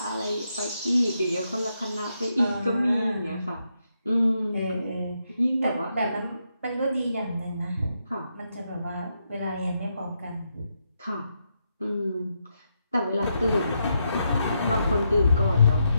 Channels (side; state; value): both; inverted; correlation -0.81